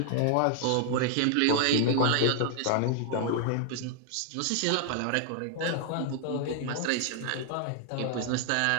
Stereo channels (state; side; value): different; both; correlation 0.00